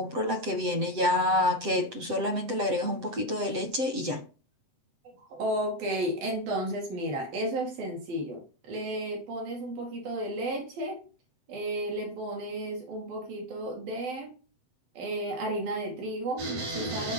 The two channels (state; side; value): late; left; 7.8 ms